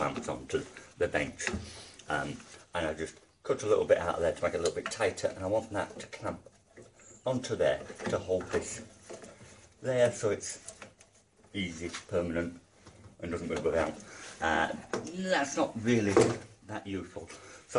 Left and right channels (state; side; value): identical; both; correlation 1.00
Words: onto the bench. And I just cut a little bit out of there to make it a little bit tighter, and I want that to clamp onto there to hold this there so it's easy, permanent, and doesn't move around. That's not really that useful,